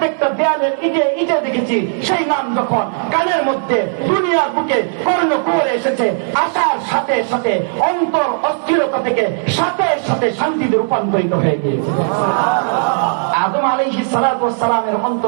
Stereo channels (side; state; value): left; silent; 61 dB below the other